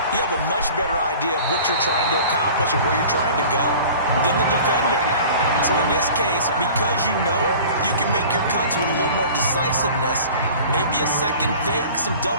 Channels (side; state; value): both; inverted; correlation -0.43